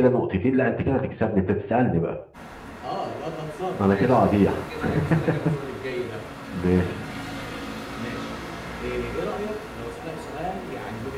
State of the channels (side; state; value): both; identical; correlation 1.00